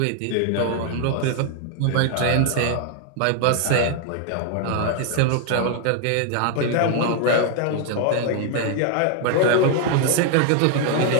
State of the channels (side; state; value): both; different; correlation 0.00